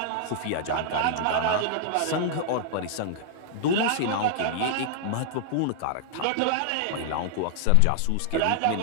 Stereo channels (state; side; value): different; both; correlation -0.01